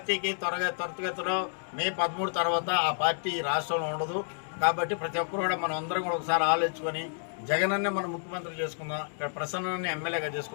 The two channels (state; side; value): silent; right; digital silence